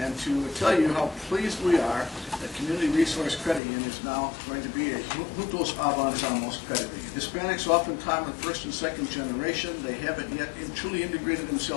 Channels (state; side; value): drops out; right; at 3.6 s